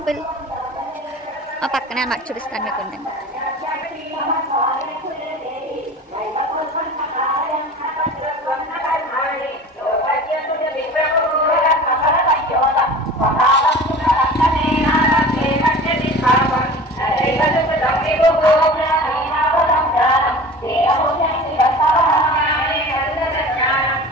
ఆ పక్కనే అన్నమాట, చూపిస్తాను మీకు. ఉండండి.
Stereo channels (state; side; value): normal; both; correlation 0.38